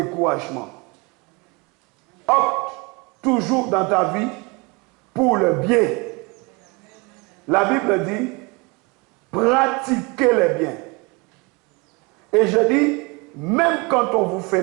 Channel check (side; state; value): left; quieter; 28.1 dB